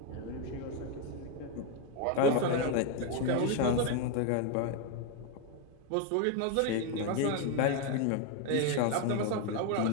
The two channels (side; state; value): both; different; correlation 0.01